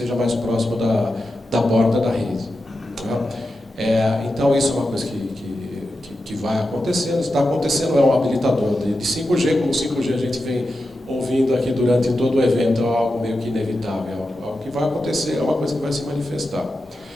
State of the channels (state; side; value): normal; both; correlation 0.90